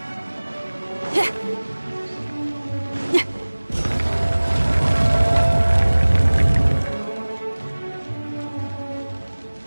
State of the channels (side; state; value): both; inverted; correlation -1.00